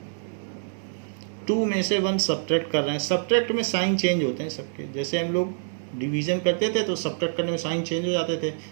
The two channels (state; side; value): silent; left; digital silence